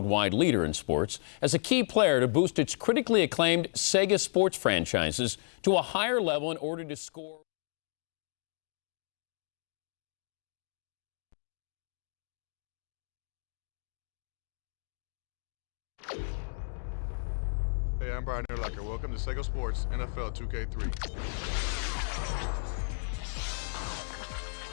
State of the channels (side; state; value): right; silent; digital silence